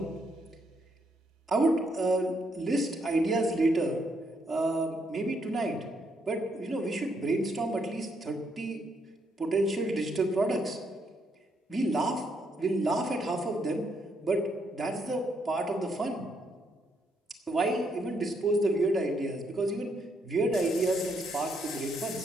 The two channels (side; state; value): both; normal; correlation 0.75